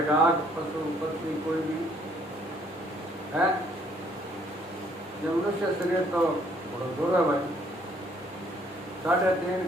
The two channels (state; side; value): normal; both; correlation 0.64